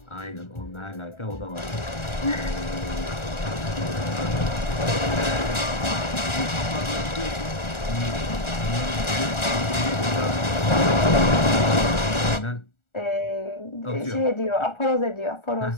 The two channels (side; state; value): right; late; 1.4 ms